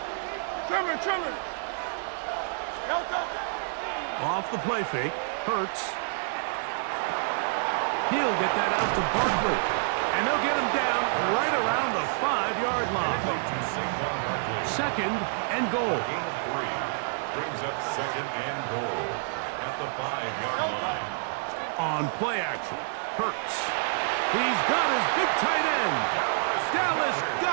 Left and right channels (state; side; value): silent; left; 57 dB below the other